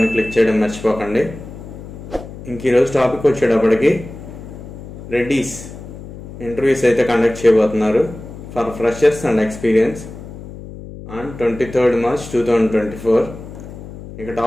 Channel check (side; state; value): left; noise; hum, 13 dB below the sound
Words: ని క్లిక్ చేయడం మర్చిపోకండి. ఈ రోజు టాపిక్ వచ్చేటప్పటికి రెడ్డీస్ ఇంటర్వ్యూస్ అయితే కండక్ట్ చేయబోతున్నారు for freshers and experience on 23rd March 2024. ఇక